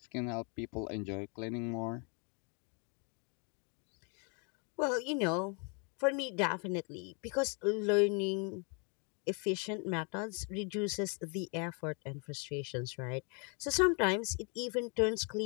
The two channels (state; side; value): quieter; right; 35.7 dB